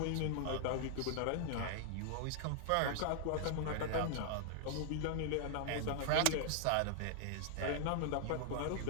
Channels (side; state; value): both; different; correlation -0.01